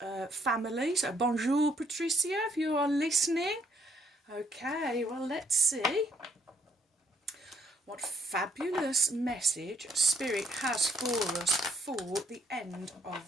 family. So bonjour Patricia, if you are listening. Okay, well, let's see what fabulous message Spirit has for us for the end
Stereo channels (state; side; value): normal; both; correlation 0.69